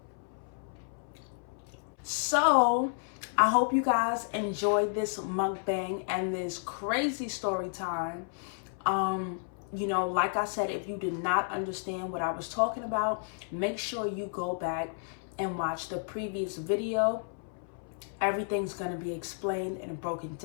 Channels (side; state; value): right; silent; 57 dB below the other